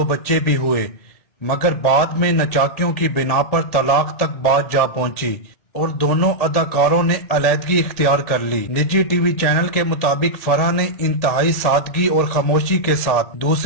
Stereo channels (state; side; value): late; right; 1.8 ms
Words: बच्चे भी हुए, मगर बाद में नचाकियों की बिना पर तलाक तक बात जा पहुंची और दोनों अदाकारों ने अलहदगी इख्तियार कर ली। निजी टीवी चैनल के मुताबिक फराह ने इंतहाई सादगी और खामोशी के साथ